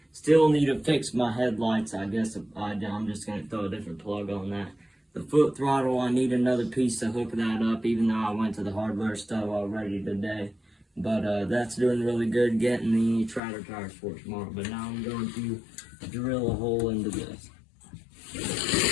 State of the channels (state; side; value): drops out; right; at 13.4 s